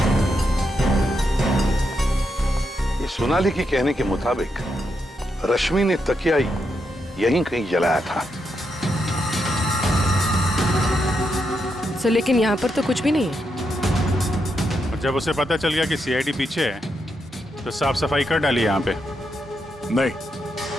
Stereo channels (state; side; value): normal; both; correlation 0.82